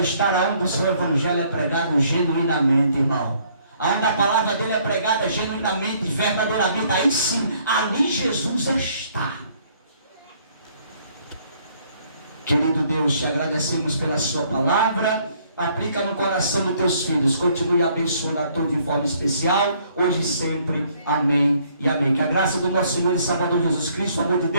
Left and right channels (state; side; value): inverted; both; correlation -0.64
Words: onde o seu Evangelho é pregado genuinamente, irmão. Onde a palavra dele é pregada genuinamente, verdadeiramente. Aí sim, ali Jesus está. Querido Deus, te agradecemos pela sua palavra. Aplica no coração dos teus filhos. Continue abençoando a todos de forma especial, hoje e sempre. Amém e amém. Que a graça do nosso Senhor e Salvador Jesus Cristo, o amor de